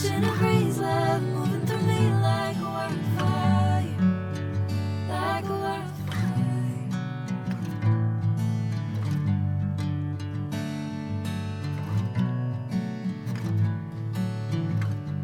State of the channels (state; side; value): identical; both; correlation 1.00